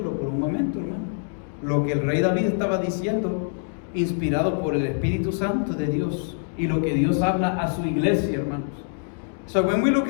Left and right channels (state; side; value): silent; right; digital silence